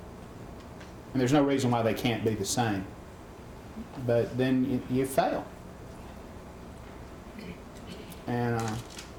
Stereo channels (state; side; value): identical; both; correlation 1.00